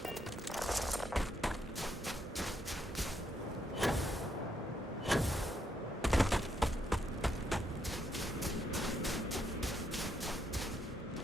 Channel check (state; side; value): normal; both; correlation 0.76